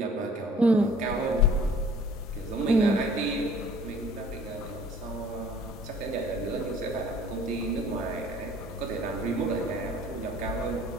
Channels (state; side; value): normal; both; correlation 0.52